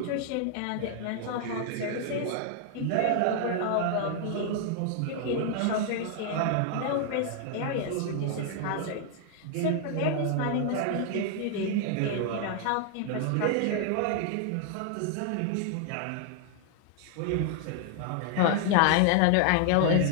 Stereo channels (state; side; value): different; both; correlation 0.00